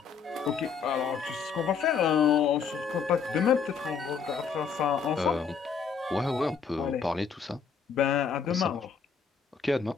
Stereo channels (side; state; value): right; quieter; 6.2 dB